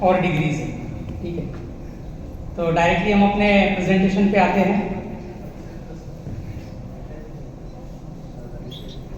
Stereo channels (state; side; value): identical; both; correlation 1.00